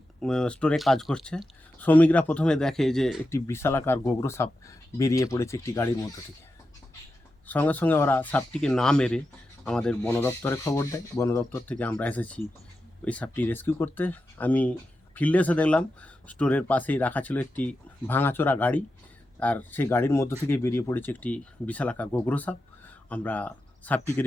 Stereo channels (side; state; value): both; normal; correlation 0.89